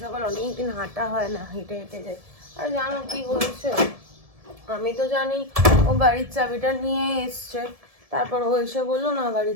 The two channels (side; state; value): left; late; 1.7 ms